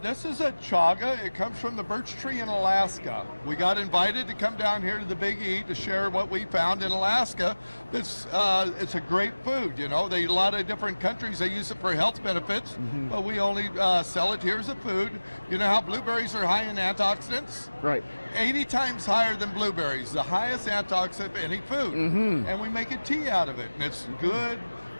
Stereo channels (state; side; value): inverted; both; correlation -1.00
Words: This is a chaga. It comes from the birch tree in Alaska. We got invited to come down here to the Big E to share what we found in Alaska. It's a great food. You know, a lot of different countries, they use it for health benefits, but we only sell it here as a food. You know how blueberries are high in antioxidants? Right. 80 times higher than blueberries, the highest antioxidant of any food. And we make a tea out of it, and it's good